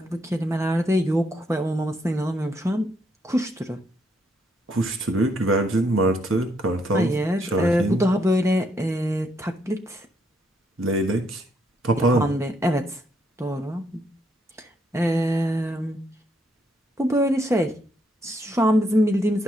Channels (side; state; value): both; normal; correlation 0.74